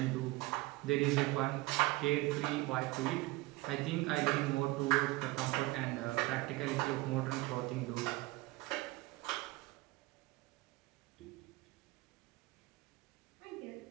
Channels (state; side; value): quieter; left; 20.9 dB